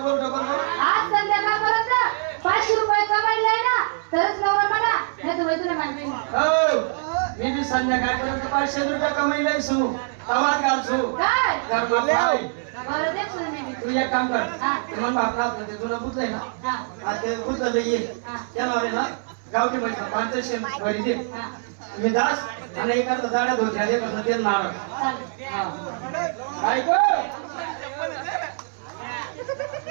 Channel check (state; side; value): silent; left; 63 dB below the other